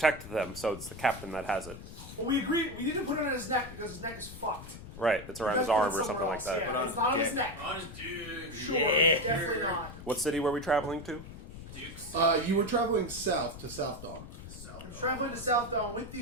them, so it's the captain that has it. Well, we agreed. We didn't put it on his neck because his neck is fucked. Right, it's around We his gotta put arm it or something somewhere like else. that. Yeah, Put on it's not on his his neck. On his dick. Sure, Yeah. definitely not. What city were we traveling to? Dukes. You were traveling south to Southdawn. I'm traveling to Southdawn with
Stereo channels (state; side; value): noise; left; rumble, 13 dB below the sound